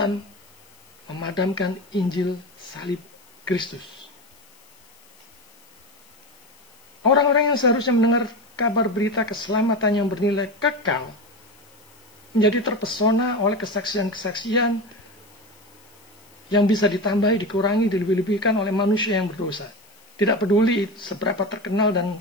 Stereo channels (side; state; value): left; noise; hiss, 29 dB below the sound